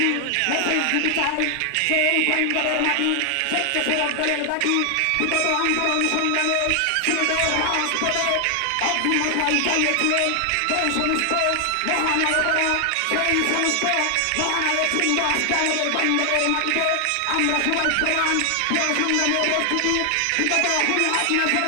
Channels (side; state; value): both; different; correlation 0.00